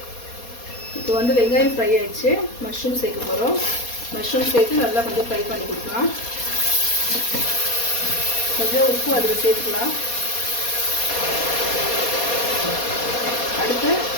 இப்போ வந்து வெங்காயம் ஃப்ரை ஆகிடுச்சு. மஷ்ரூம் சேர்க்க போகிறோம். மஷ்ரூம் சேர்த்து நல்லா கொஞ்சம் ஃப்ரை பண்ணி கொடுக்கலாம். கொஞ்சம் உப்பு அதில் சேர்த்துக்கலாம். அடுத்து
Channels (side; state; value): right; late; 4.2 ms